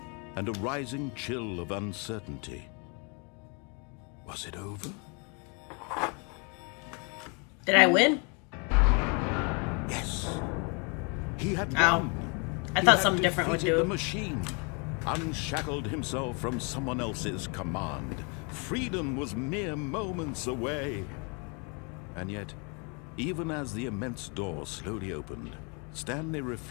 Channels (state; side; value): quieter; right; 33.9 dB